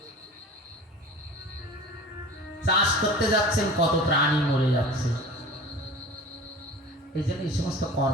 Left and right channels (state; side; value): normal; both; correlation 0.39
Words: চাষ করতে যাচ্ছেন, কত প্রাণী মরে যাচ্ছে। এই জন্য এই সমস্ত